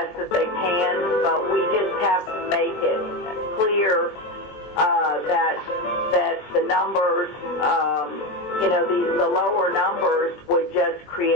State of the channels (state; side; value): late; right; 20 ms